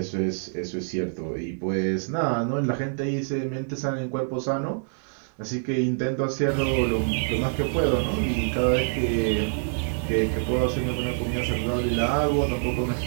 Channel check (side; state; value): left; silent; digital silence